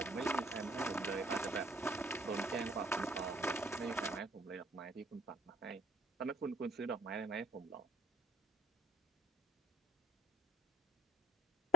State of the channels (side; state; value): both; normal; correlation 0.51